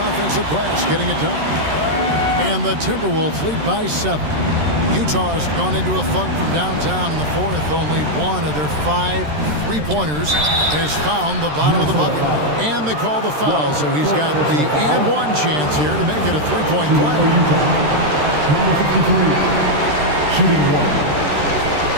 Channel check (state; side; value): late; left; 13 ms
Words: offensive glass, getting it done. And the Timberwolves lead by 7. Utah's gone into a funk from downtown in the 4th. Only one of their 5 3-pointers has found the bottom of the bucket. And they call the foul, so he's got the and-one chance here to make it a 3-point play. Number 53, shooting 1.